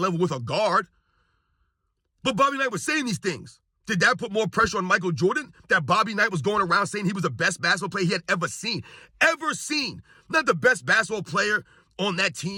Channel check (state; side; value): identical; both; correlation 1.00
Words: with a guard. But Bobby Knight was saying these things. Did that put more pressure on Michael Jordan? That Bobby Knight was going around saying he was the best basketball player he had ever seen. Ever seen. Not the best basketball player on that